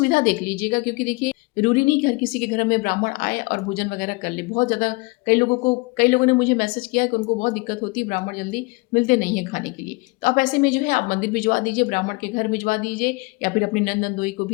देख लीजिएगा, क्योंकि देखिए जरूरी नहीं कि हर किसी के घर में ब्राह्मण आए और भोजन वगैरह कर ले। बहुत ज़्यादा कई लोगों ने मुझे मैसेज किया है कि उनको बहुत दिक्कत होती है, ब्राह्मण जल्दी मिलते नहीं है खाने के लिए। तो आप ऐसे में जो है आप मंदिर भिजवा दीजिए, ब्राह्मण के घर भिजवा दीजिए, या फिर अपनी नंद नंदोई को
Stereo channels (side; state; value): right; quieter; 26.4 dB